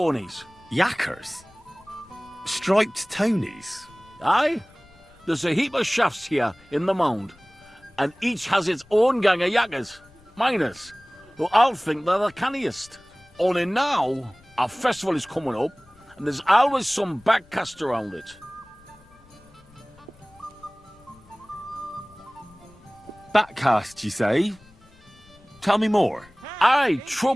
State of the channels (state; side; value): noise; left; rumble, 28 dB below the sound